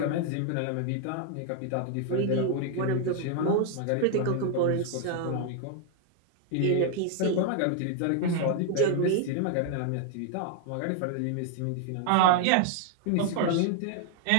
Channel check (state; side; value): different; both; correlation 0.00